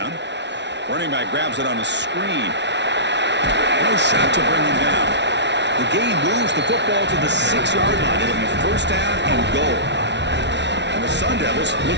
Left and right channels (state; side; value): late; left; 0.51 ms